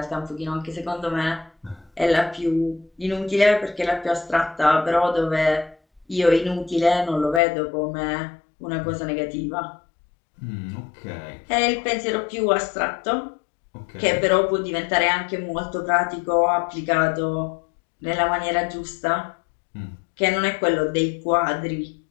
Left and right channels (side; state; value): right; drops out; at 7.4 s